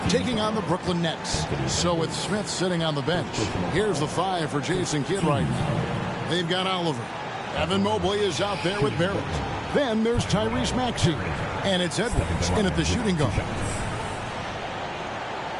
taking on the Brooklyn Nets. So with Smith sitting on the bench, here's the 5 for Jason Kidd right now. They've got Oliver. Evan Mobley is out there with Barrett. Then there's Tyrese Maxey. And it's Edwards in at the shooting guard.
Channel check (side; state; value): both; identical; correlation 1.00